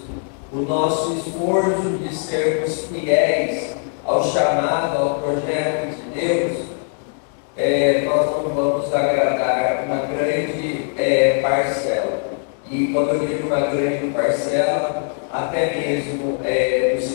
o nosso esforço de sermos fiéis ao chamado, ao projeto de Deus, nós não vamos agradar uma grande parcela. E quando eu digo uma grande parcela, até mesmo dos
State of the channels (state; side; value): silent; right; 55 dB below the other